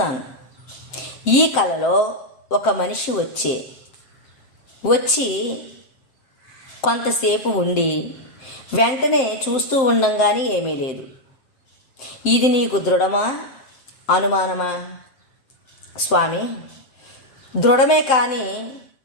ఈ కలలో ఒక మనిషి వచ్చి కొంతసేపు ఉండి వెంటనే చూస్తూ ఉండంగానే ఏమీ లేదు. ఇది నీకు దృఢమా అనుమానమా? స్వామి, దృఢమే, కానీ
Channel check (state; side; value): late; right; 7.6 ms